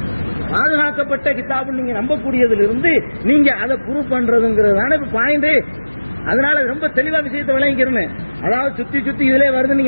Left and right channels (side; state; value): both; inverted; correlation -1.00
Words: பாதுகாக்கப்பட்ட கிதாபு நீங்க நம்பக்கூடியதிலிருந்து நீங்க அதை ப்ரூவ் பண்றதுங்கிறதான பாயிண்ட். அதனால ரொம்ப தெளிவா விஷயத்தை விளங்கிக்கிறேன். அதாவது சுத்தி சுத்தி இதுல வருது